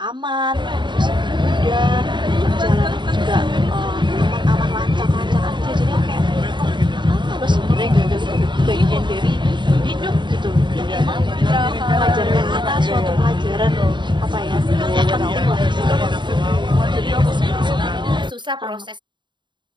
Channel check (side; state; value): left; late; 0.22 ms